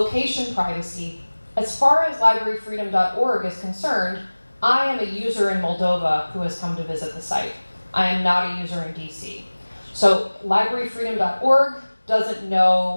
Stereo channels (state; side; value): inverted; both; correlation -1.00